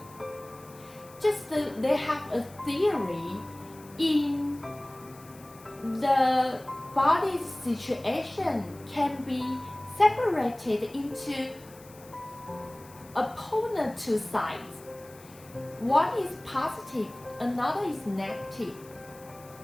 Just they have a theory in the body's situation can be separated into opponent two sides. One is positive, another is negative.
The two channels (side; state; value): left; noise; hiss, 22 dB below the sound